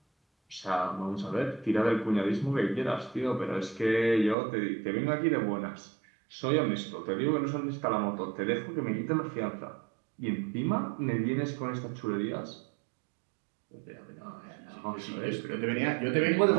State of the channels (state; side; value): drops out; left; at 4.4 s